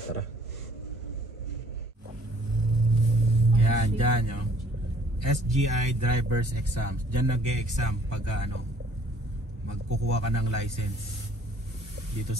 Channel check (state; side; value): normal; both; correlation 0.59